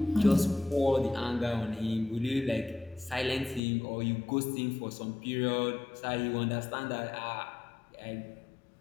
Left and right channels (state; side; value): drops out; right; at 3.6 s